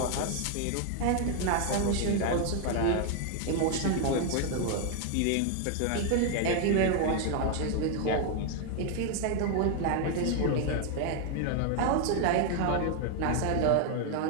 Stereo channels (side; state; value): both; different; correlation 0.00